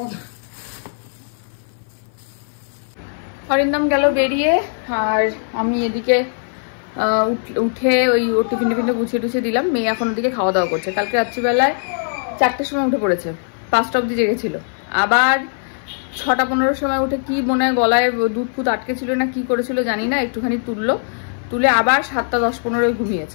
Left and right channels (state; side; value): silent; right; 58 dB below the other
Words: অরিন্দম গেল বেরিয়ে, আর আমি এদিকে উঠে ওই ওর টিফিন গুছিয়ে টুছিয়ে দিলাম। মেয়ে এখন ওদিকে খাওয়া দাওয়া করছে। কালকে রাত্রিবেলায় 4টের সময় উঠে পড়েছে, 5টা অবধি জেগেছিল। আবার 6টা 15 সময় উঠে কি মনে হয় গলায় দুধ ফুট আটকে ছিল না কি করেছিল জানি না, একটুখানি তুলে আবার 7টা 10-15